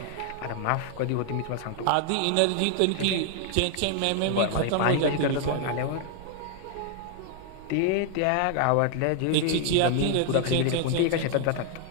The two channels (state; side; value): different; both; correlation 0.00